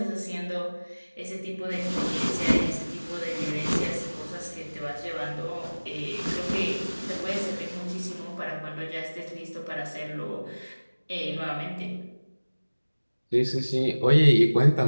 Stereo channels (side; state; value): both; inverted; correlation -1.00